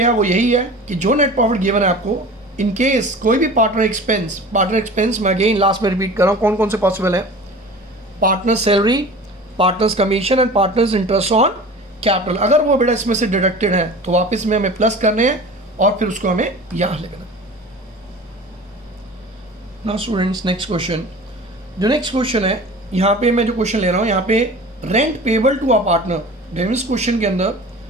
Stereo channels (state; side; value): normal; both; correlation 0.38